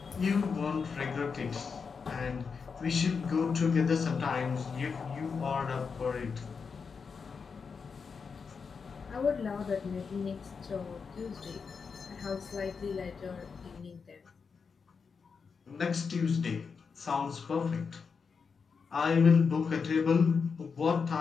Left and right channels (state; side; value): quieter; right; 5.5 dB